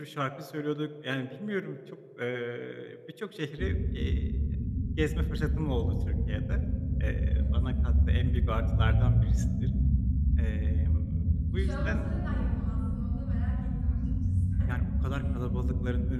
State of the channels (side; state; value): both; identical; correlation 1.00